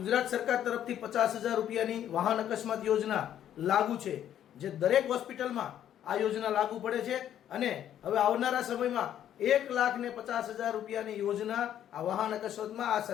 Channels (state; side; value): quieter; right; 10.7 dB